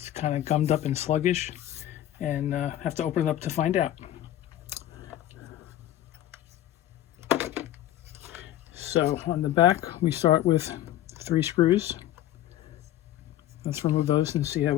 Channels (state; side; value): quieter; right; 12.9 dB